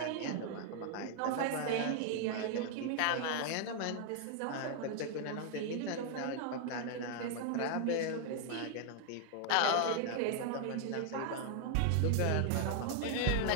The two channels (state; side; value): different; both; correlation 0.00